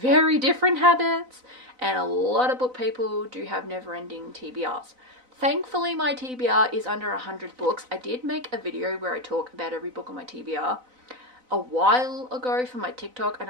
very different habits, and a lot of book people do have never-ending TBRs. Thankfully, my TBR is under 100 books. I did make a video where I talk about every book on my TBR a while ago for my TikTok, and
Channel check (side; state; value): left; late; 4.0 ms